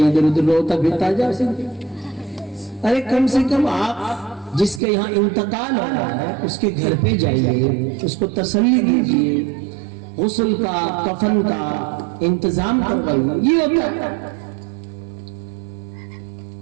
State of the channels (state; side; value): drops out; left; at 4.8 s